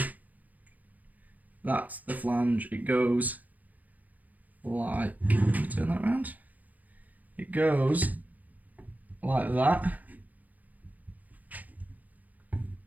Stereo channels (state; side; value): late; left; 0.080 ms